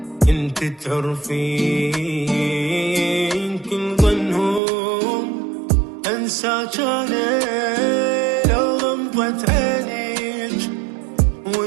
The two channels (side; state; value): left; drops out; at 4.6 s